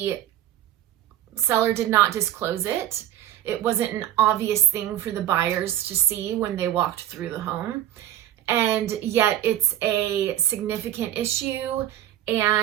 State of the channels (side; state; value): left; quieter; 12.4 dB